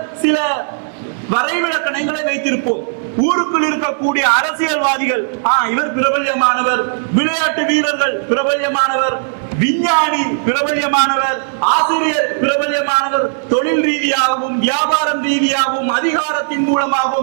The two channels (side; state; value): left; silent; digital silence